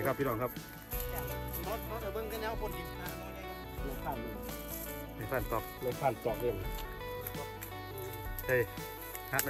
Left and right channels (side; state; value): both; identical; correlation 1.00